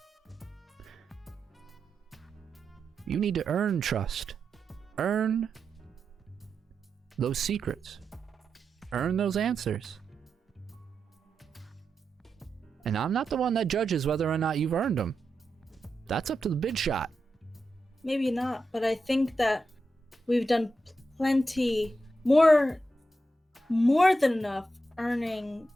You need to earn trust. Earn those secrets. Earn those answers. And I'm not the one that judges whether or not you've earned them. That's up to the big shot. Maybe not, but I think that we've done plenty, more than enough earning.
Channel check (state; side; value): normal; both; correlation 0.88